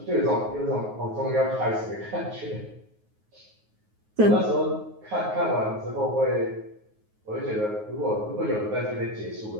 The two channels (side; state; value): left; late; 9.4 ms